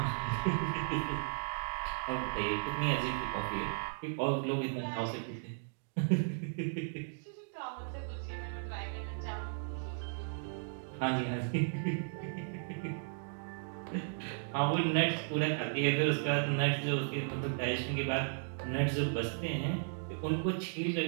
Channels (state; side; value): silent; left; digital silence